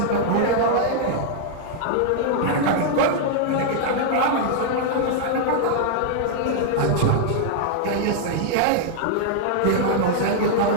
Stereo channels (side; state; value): both; different; correlation -0.01